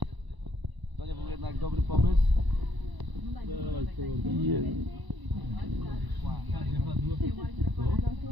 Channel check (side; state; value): left; late; 1.0 ms